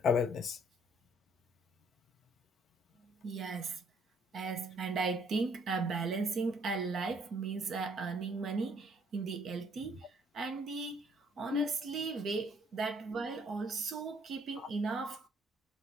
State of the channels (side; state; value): both; normal; correlation 0.64